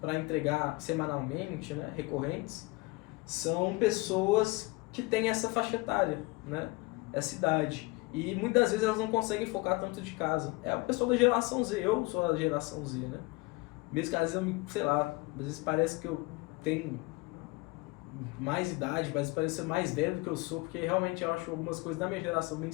para entregar semanalmente, né, recorrentes, são pessoas que têm essa faixa etária, né, essa idade. E muitas vezes elas não conseguem focar tanto de casa. É o pessoal da geração Z, eu sou da geração Z, né? Mesmo que às vezes eu, sei lá, às vezes parece que eu tenho mais idade, mas parece ser mais velho do que eu sou, porque realmente eu acho algumas coisas da minha geração bem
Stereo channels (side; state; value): right; quieter; 23.9 dB